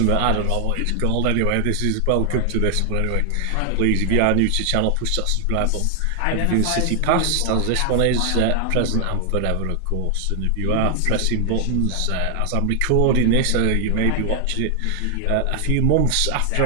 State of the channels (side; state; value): both; different; correlation 0.00